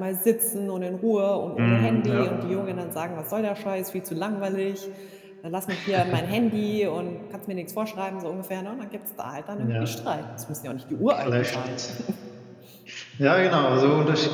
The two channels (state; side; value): identical; both; correlation 1.00